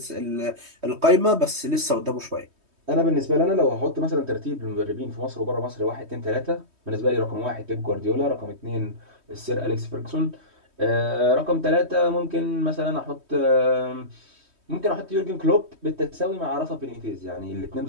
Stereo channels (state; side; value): late; left; 3.2 ms